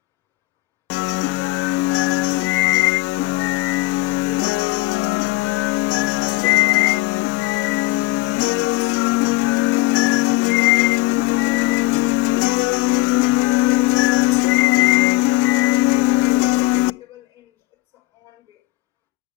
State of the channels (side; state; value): right; quieter; 20.4 dB